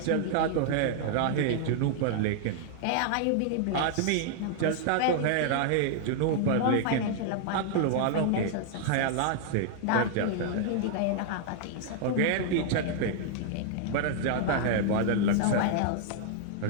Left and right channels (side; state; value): both; different; correlation -0.01